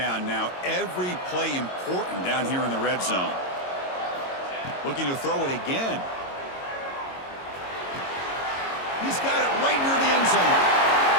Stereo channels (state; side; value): late; right; 22 ms